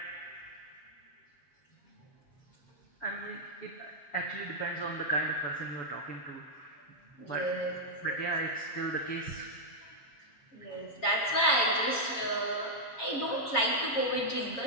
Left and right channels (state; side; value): late; right; 7.1 ms